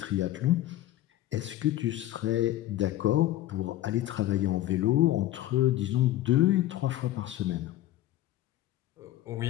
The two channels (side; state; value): right; quieter; 14.4 dB